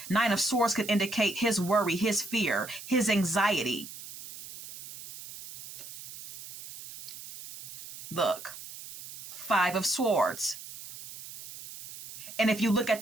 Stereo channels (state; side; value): noise; right; hiss, 14 dB below the sound